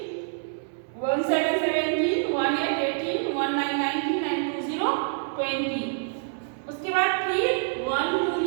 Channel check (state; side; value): silent; left; 61 dB below the other